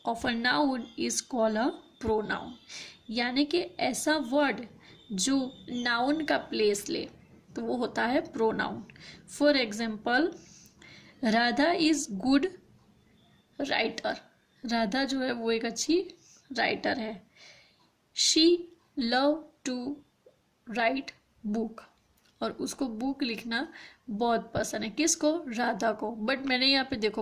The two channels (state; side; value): identical; both; correlation 1.00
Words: of a noun is called a pronoun. यानी कि ऐसा word जो noun का place ले तो वो होता है pronoun. For example, Radha is good writer. Radha जो है वो एक अच्छी राइटर है. She love to write book. और उसको बुक लिखना बहुत पसंद है. किसको? राधा को. बट मैंने यहाँ पे